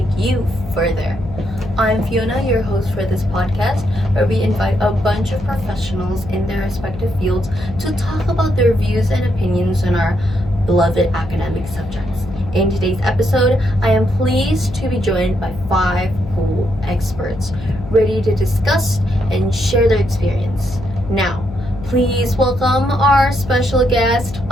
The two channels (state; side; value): noise; left; hum, 12 dB below the sound